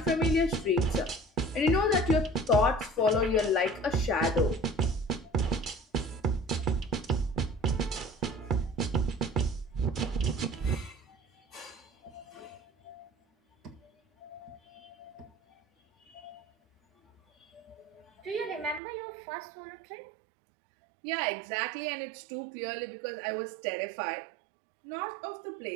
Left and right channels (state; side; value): drops out; left; at 18.8 s